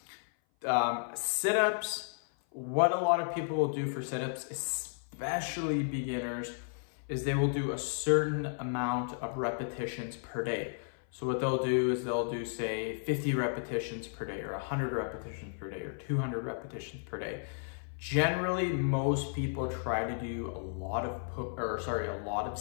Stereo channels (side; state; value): right; silent; 55 dB below the other